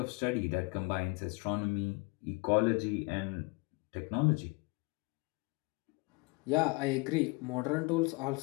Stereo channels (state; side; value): quieter; right; 28.2 dB